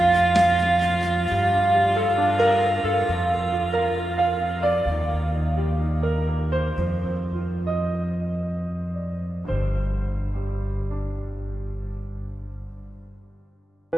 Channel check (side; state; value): both; normal; correlation 0.90